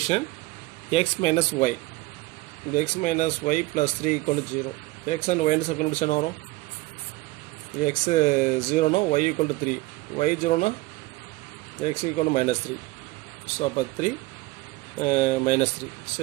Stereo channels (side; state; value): left; quieter; 20.1 dB